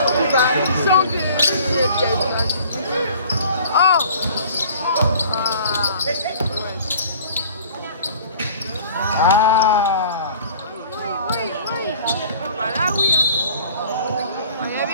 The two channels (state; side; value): inverted; both; correlation -0.49